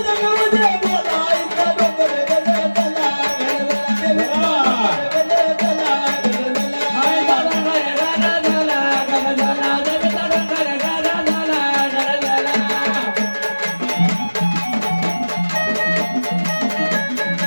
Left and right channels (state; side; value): inverted; both; correlation -1.00